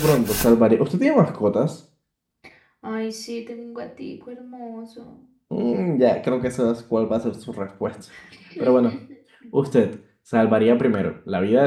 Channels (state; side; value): identical; both; correlation 1.00